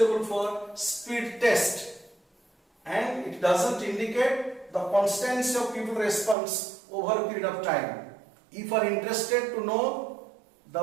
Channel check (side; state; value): left; drops out; at 6.4 s